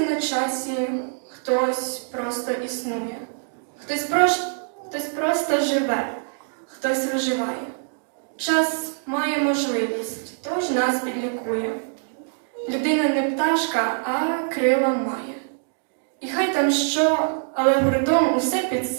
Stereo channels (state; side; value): silent; left; digital silence